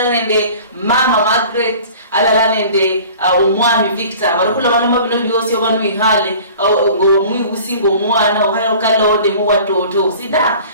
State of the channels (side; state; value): both; inverted; correlation -0.45